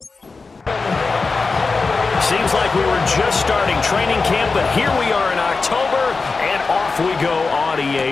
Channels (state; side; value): quieter; right; 4.2 dB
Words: seems like we were just starting training camp, but here we are in October, and off we go on